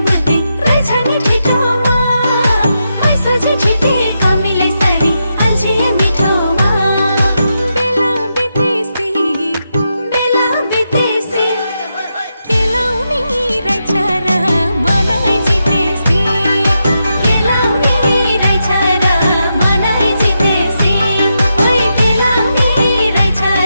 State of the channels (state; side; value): inverted; both; correlation -0.85